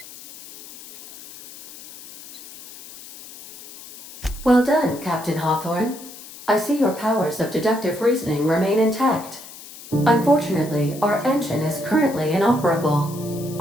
Well done, Captain Hawthorne. I see your powers of deductive reasoning remain intact. Unfortunately, our engine is currently inoperable.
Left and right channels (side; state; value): left; noise; hiss, 17 dB below the sound